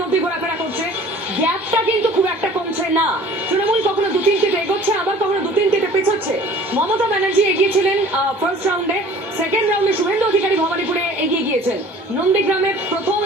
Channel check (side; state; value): both; normal; correlation 0.48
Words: মধ্যে ঘোরাফেরা করছে। গ্যাপটা কিন্তু খুব একটা কমছে না। তৃণমূল কখনো 2-3টিতে এগোচ্ছে, আবার কখনো 2-3টিতে পেছোচ্ছে। মমতা ব্যানার্জি এগিয়েছিলেন ফার্স্ট রাউন্ডে। সেকেন্ড রাউন্ডে শুভেন্দু অধিকারী ভবানীপুরে এগিয়ে গিয়েছেন। নন্দীগ্রামে প্রথম